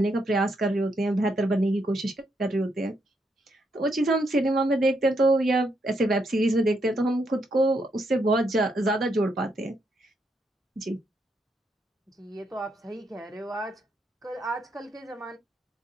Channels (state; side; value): normal; both; correlation 0.78